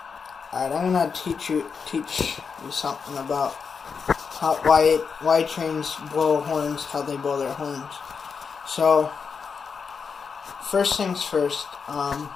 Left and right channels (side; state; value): right; quieter; 5.8 dB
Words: Alright, I'm gonna teach you something about why trains blow horns, how they blow their horns. So, first things first.